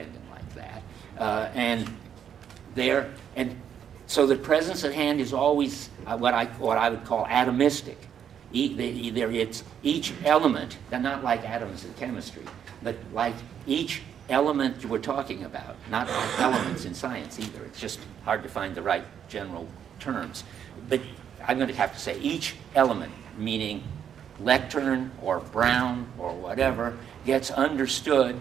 like that. And so the presence at hand is always what I would call atomistic. Either it's each element, and not like atoms in chemistry, but like each element we're talking about, not like elements in science either. It's just hard to find the right general terms. But I'm going to have to say each element, meaning lectern or brown or whatever, gets understood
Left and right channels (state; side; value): quieter; left; 8.7 dB